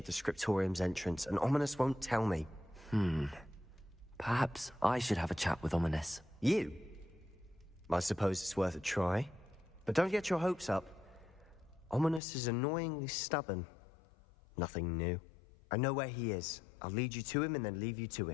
the Scriptorium's entrance, and Ominous won't tell me. Perhaps I should have a chat with Ominous. You? I suppose it's worth a try. But don't get your hopes up. Ominous is annoyingly stubborn. Nothing new. I know where he is. I'll lead you to him and then leave you to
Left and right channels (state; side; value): drops out; right; at 12.2 s